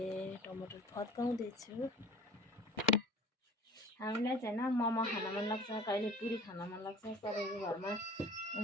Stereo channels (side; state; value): both; normal; correlation 0.44